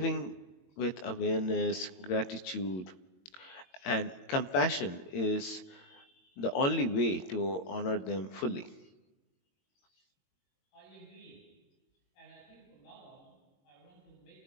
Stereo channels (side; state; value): right; late; 22 ms